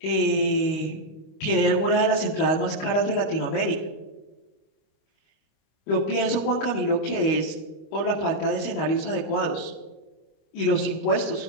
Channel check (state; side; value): late; right; 25 ms